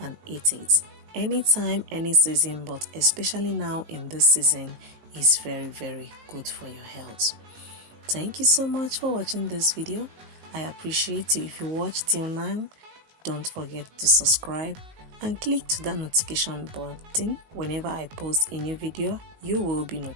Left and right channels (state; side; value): late; left; 19 ms